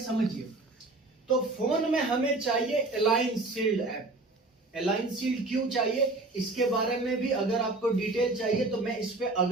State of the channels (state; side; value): quieter; left; 3.1 dB